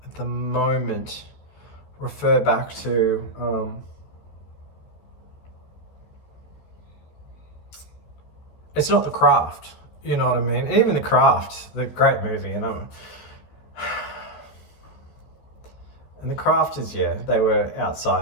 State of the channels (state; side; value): late; right; 14 ms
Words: at the moment refer back to it's not The Craft, you know what I mean? Even The Craft, the great movie, and The Craft is, yeah, they were